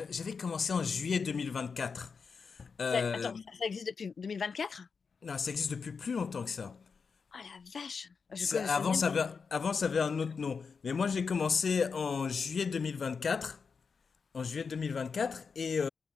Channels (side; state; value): right; quieter; 5.4 dB